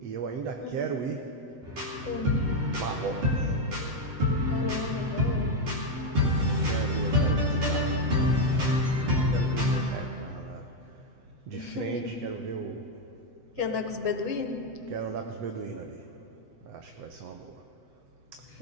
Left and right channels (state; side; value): late; left; 7.9 ms